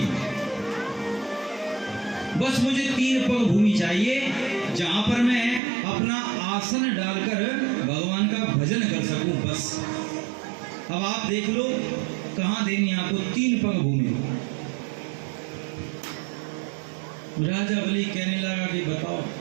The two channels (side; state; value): left; drops out; at 5.6 s